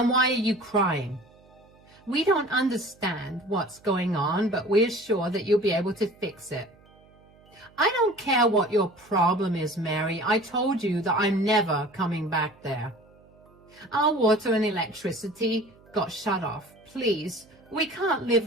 why are you crying?" "We don't understand what's going on, but we're sure that you'll be able to fix it." "I don't care what your problem is, Mary. I told you that I'm never coming back there." "Our water and electricity got shut off. Please, we can't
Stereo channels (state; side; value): noise; right; hum, 28 dB below the sound